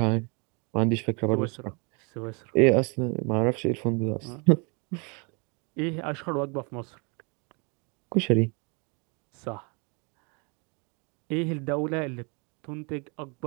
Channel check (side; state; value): left; quieter; 32.6 dB